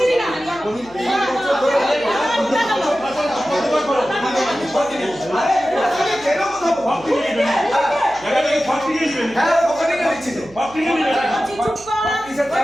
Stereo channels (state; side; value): noise; right; hum, 23 dB below the sound